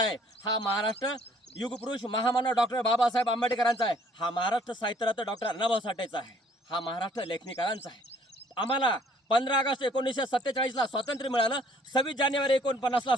हा महाराष्ट्र युगपुरुष महामानव डॉक्टर बाबासाहेब आंबेडकरांचा आहे. हा महाराष्ट्र साहित्यरत्न डॉक्टर अण्णाभाऊ साठेचा आहे. हा महाराष्ट्र लेखनिकारांचा आहे. आम्हाला 15 ऑगस्ट 1947ला स्वातंत्र्य मिळालं. 26 जानेवारी 49ला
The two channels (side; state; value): both; normal; correlation 0.60